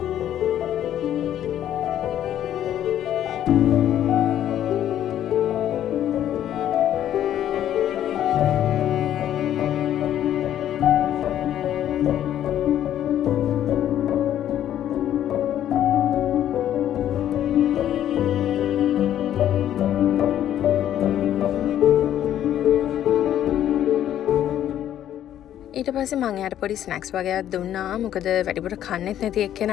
ඊට පස්සේ මං එයාට පොඩි ස්නැක්ස් වගේක් දුන්නා. මොකද වැඩිපුර කන්නෙත් නැති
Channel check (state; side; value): quieter; right; 11.2 dB